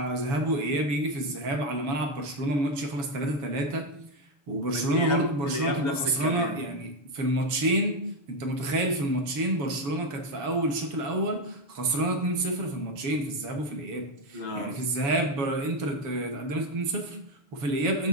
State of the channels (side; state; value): left; late; 7.1 ms